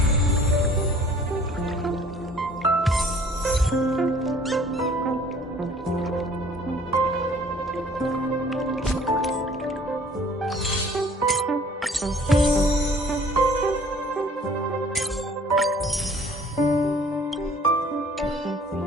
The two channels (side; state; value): both; normal; correlation 0.54